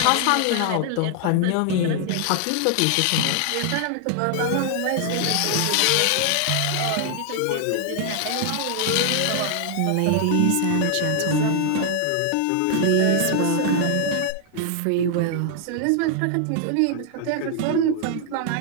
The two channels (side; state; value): both; different; correlation 0.00